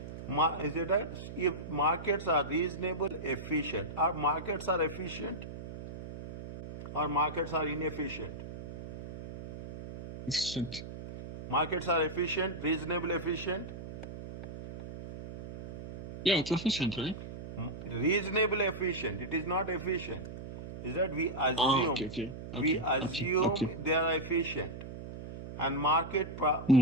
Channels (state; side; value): noise; right; hum, 10 dB below the sound